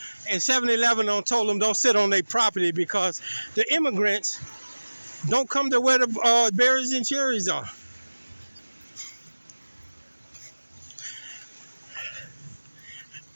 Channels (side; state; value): both; inverted; correlation -1.00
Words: And 7-Eleven told them don't sit on their property because the immigrants don't come to where the berries and cherries are.